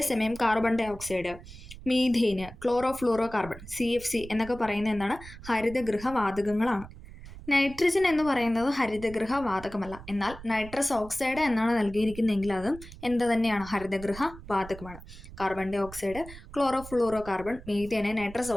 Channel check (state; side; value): noise; right; rumble, 15 dB below the sound